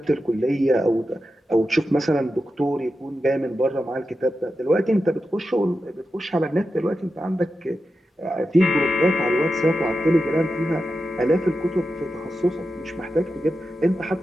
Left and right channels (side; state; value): both; normal; correlation 0.90